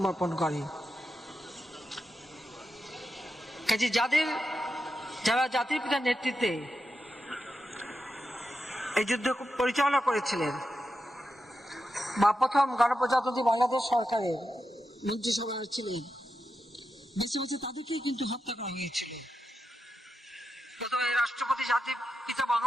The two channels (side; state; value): both; normal; correlation 0.89